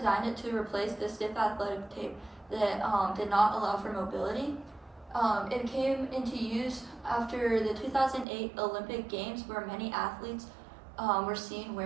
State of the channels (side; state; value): left; drops out; at 8.2 s